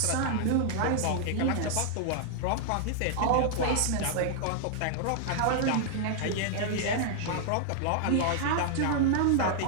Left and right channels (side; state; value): both; different; correlation -0.01